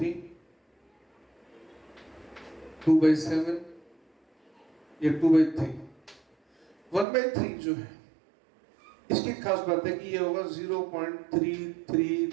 2/7 या 2/3। 1/3 जो है इसकी खास बात है कि ये होगा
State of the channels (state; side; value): drops out; left; at 7.1 s